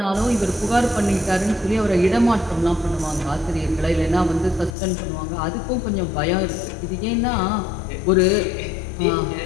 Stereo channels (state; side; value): drops out; right; at 4.7 s